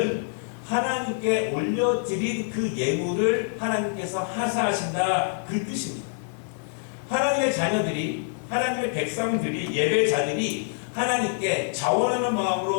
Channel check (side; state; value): right; silent; 59 dB below the other